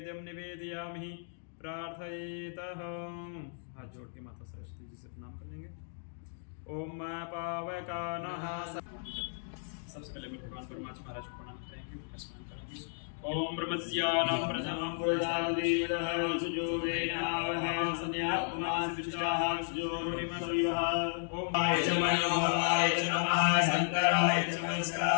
निवेदयामि। प्रार्थयेतः हाथ जोड़ के माता सरस्वती जी से प्रणाम कर लेंगे। ओम पावकानः सबसे पहले भगवान परमात्मा महाराज को प्रणाम करेंगे, उनका स्मरण करेंगे। ओम ब्रह्मस्यानं प्रथमं पुरुषादिदः सुजोवेनावह संध्याकुमारसिष्टाः सुजोरिमसुयः। ओम आय च मनोहराय च नमः शंकराय च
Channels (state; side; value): silent; right; digital silence